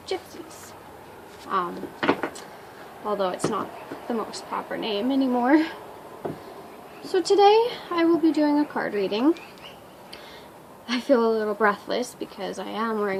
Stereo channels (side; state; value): both; identical; correlation 1.00